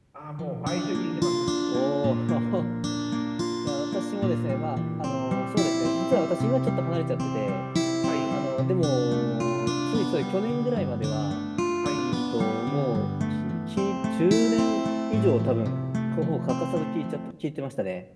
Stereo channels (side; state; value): both; identical; correlation 1.00